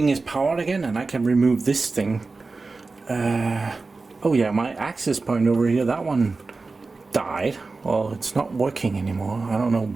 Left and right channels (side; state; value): left; quieter; 3.8 dB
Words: is powered again, and I can remove this thing. Oh yeah, my access point over here, that one died. Well, it's not working anymore. I don't know